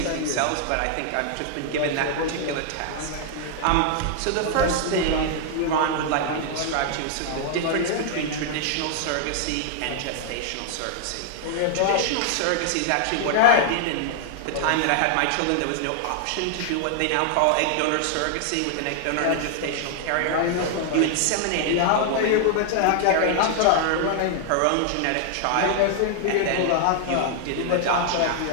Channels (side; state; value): both; different; correlation 0.00